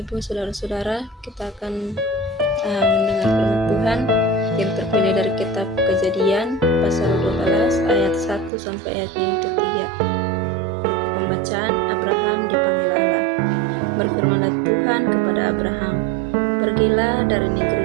saudara-saudara, kita akan mendengar firman Tuhan yang terpilih dari kitab Kejadian pasal 12 ayat 1 sampai ayat yang ketiga. Buku pembacaan, Abraham dipanggil Allah. Berfirmanlah Tuhan kepada Abraham, pergilah dari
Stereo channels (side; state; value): left; drops out; at 8.5 s